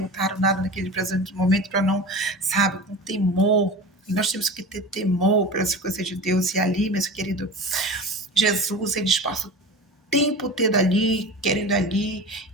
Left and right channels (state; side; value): normal; both; correlation 0.32